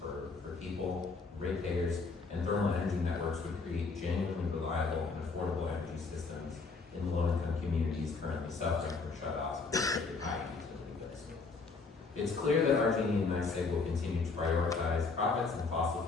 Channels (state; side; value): quieter; right; 4.3 dB